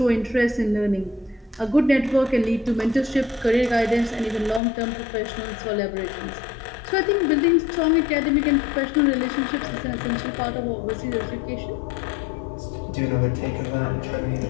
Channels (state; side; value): drops out; right; at 4.6 s